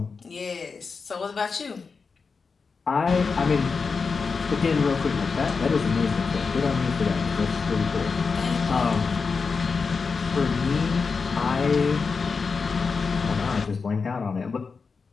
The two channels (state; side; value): quieter; right; 5.0 dB